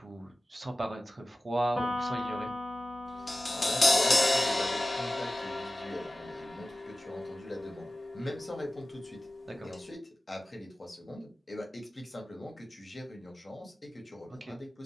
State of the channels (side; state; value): both; normal; correlation 0.96